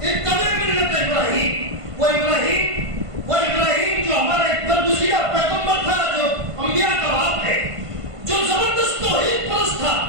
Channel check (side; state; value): left; late; 1.5 ms